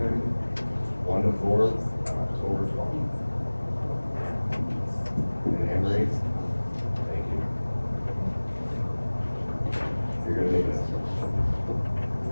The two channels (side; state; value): both; inverted; correlation -1.00